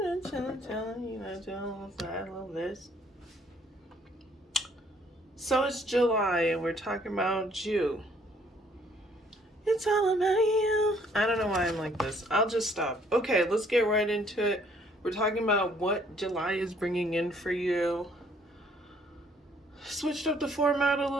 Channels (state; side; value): normal; both; correlation 0.63